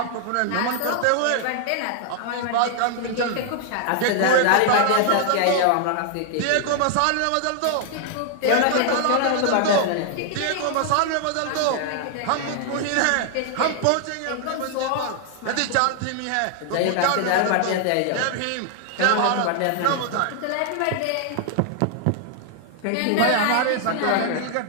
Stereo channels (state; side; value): different; both; correlation 0.00